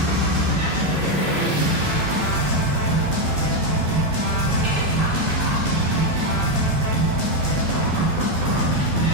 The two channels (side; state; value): left; late; 12 ms